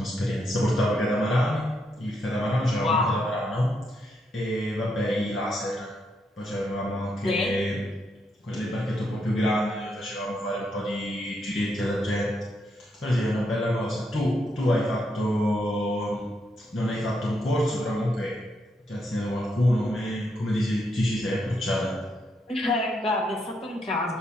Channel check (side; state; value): both; normal; correlation 0.79